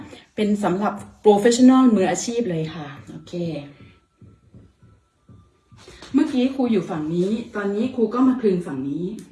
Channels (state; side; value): identical; both; correlation 1.00